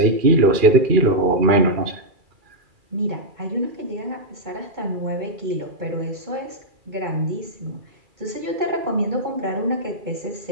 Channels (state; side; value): late; left; 2.3 ms